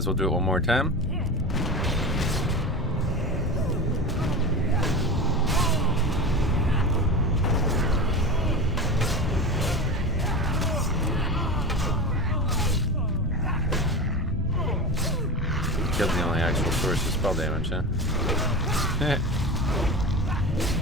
well do it one more time. Killed the only actual source of spell damage, huh?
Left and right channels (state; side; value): normal; both; correlation 0.27